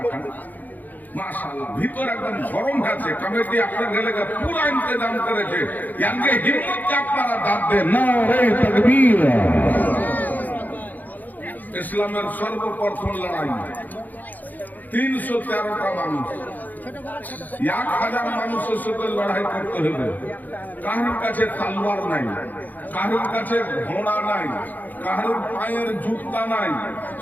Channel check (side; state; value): right; late; 0.083 ms